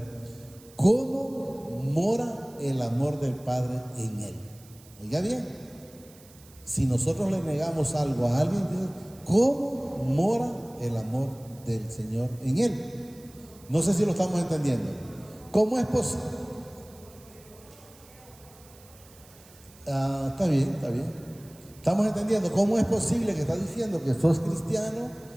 cómo mora el amor del Padre en él. Oiga bien, si nosotros le negamos algo a alguien, ¿cómo mora el amor del Señor en él? No sé si lo estamos entendiendo. ¿Cómo es posible? Está bien. Estamos entendiendo. ¿Cómo es posible que estás diciendo que sos cristiano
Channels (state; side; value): noise; right; hiss, 24 dB below the sound